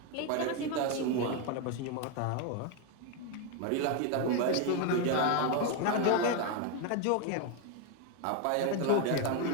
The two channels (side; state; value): both; different; correlation 0.01